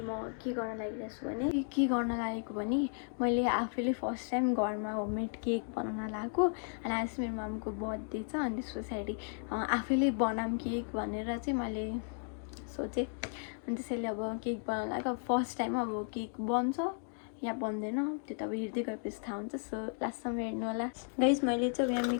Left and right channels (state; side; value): silent; right; 55 dB below the other